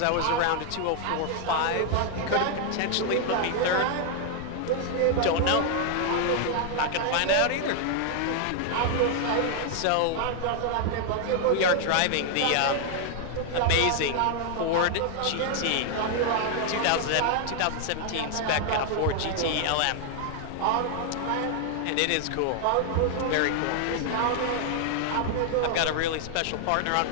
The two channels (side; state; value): both; different; correlation 0.00